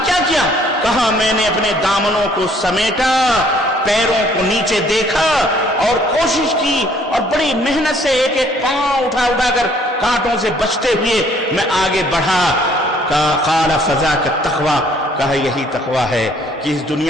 کیا کیا؟ کہا میں نے اپنے دامنوں کو سمیٹا، پیروں کو نیچے دیکھا اور کوشش کی، اور بڑی محنت سے ایک ایک پاؤں اٹھا کر کانٹوں سے بچتے ہوئے میں آگے بڑھا۔ قال فذاک التقوی، کہا یہی تقوی ہے کہ اس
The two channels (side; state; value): both; normal; correlation 0.61